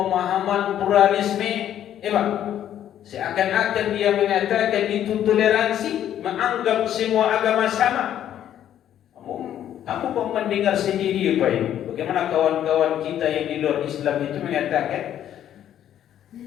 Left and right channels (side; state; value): right; quieter; 10.8 dB